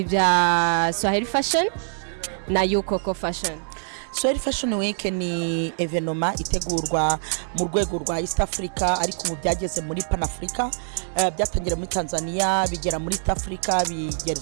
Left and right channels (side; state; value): left; silent; digital silence